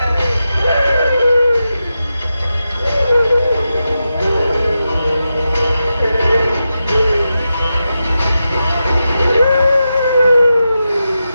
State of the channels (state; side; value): inverted; both; correlation -0.89